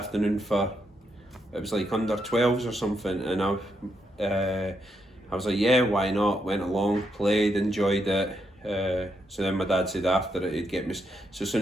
for?" It was like under 12s or something, and I was like, "Yeah, why not?" Went along, played, enjoyed it. So then my dad said after it he'd get me. So as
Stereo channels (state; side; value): normal; both; correlation 0.80